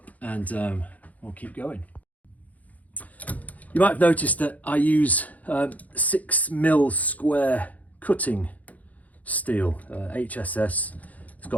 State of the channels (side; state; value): right; late; 0.075 ms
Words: and we'll keep going. You might have noticed that I use 6mm square cutting steel, HSS. It's